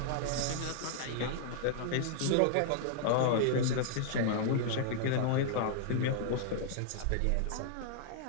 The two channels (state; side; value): different; both; correlation -0.01